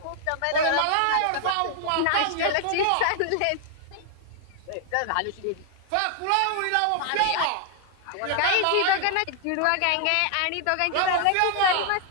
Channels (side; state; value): both; different; correlation 0.00